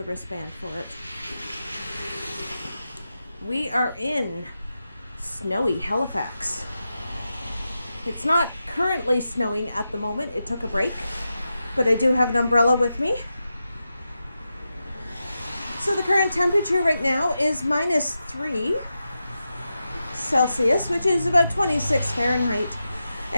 wristband for it. We are in snowy Halifax. It's not currently snowing at the moment. It took a break, but I do have an umbrella with me. So the current temperature right now is -3 Celsius, which is about 26 Fahrenheit.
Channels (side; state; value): both; inverted; correlation -0.90